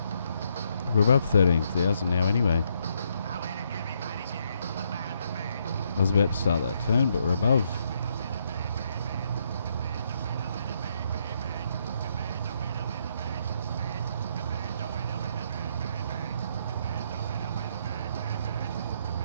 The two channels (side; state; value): both; inverted; correlation -0.75